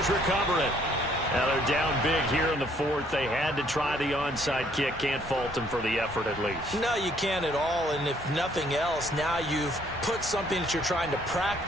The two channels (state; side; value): normal; both; correlation 0.64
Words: recover it. Now they're down big here in the 4th. They had to try the onside kick. Can't fault them for the effort at least. No, you can't at all. And if nothing else, now you've put something that you're trying to